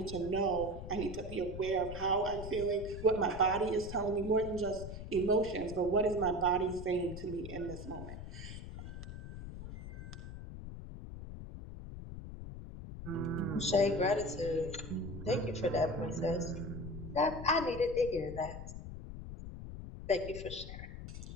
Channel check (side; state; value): left; noise; rumble, 9 dB below the sound